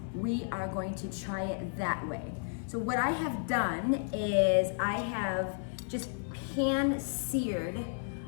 we are going to try it that way. So what I have done is I have just pan seared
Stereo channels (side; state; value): right; silent; 56 dB below the other